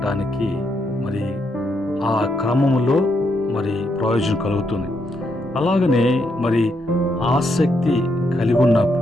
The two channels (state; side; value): normal; both; correlation 0.78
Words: మరి ఆ క్రమములో మరి ప్రయోజనం కలుగుతుంది. అలాగనే మరి ఆసక్తి కలిగి